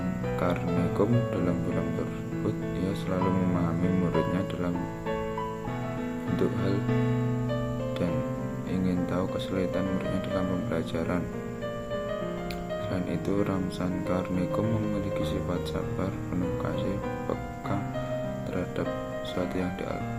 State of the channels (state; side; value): identical; both; correlation 1.00